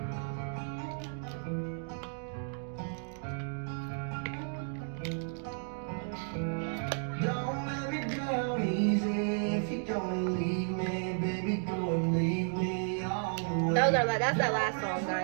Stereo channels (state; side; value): silent; left; 56 dB below the other